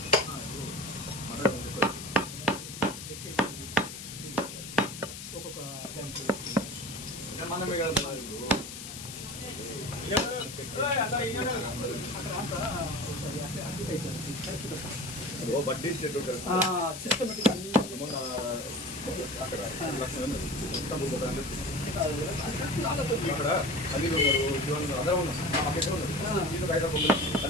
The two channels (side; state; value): left; noise; hiss, 10 dB below the sound